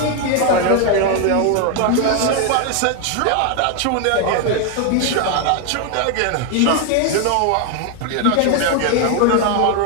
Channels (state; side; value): different; both; correlation 0.01